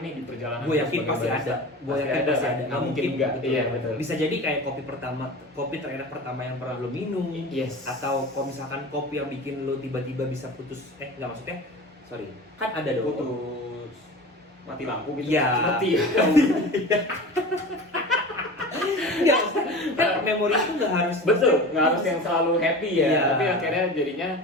nih di perjalanan Gue gua yakin sebagai pasti barista. ada. Gue yakin pasti kan? ada. Nggak mungkin nggak. betul. Iya betul. Bisa jadi kayak kopi terenak pertama yang pernah lo minum. Yes. Atau kalau misalkan kopi yang bikin lo tiba-tiba bisa putus. Nggak maksudnya. Sorry. Kan ada dong. putus mati lampu gitu. Iya. Mati. Nggak, maksudnya kan memori itu nggak harus. Betul, nggak harus yang selalu happy ya, Iya. tapi akhirnya jadinya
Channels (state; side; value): normal; both; correlation 0.33